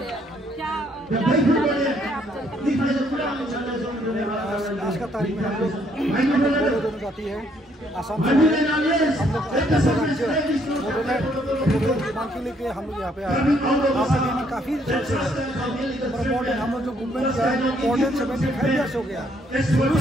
का तारीख में हम लोग दोनों जाती है आसाम से हम लोग मांग के लेके हम लोग यहाँ पे आए। आपके लिए काफ़ी इम्पोर्टेंट हम लोग जो मूवमेंट किया है 75 ईयर्स हो गया। शुरू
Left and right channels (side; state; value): both; normal; correlation 0.68